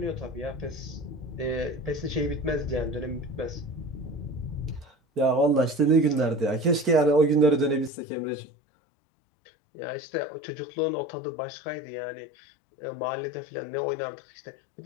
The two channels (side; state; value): right; drops out; at 7.9 s